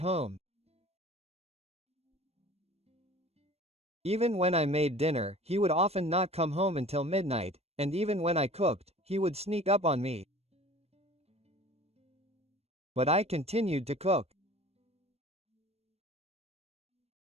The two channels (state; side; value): late; left; 0.30 ms